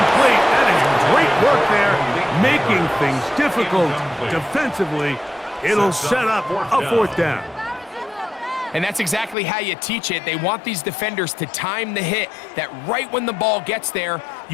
That is great work there, making things difficult defensively. It'll set up a 4th down. And that's exactly how you teach it. They want these defenders to time the hit, that right when the ball gets there,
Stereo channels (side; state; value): right; drops out; at 9.3 s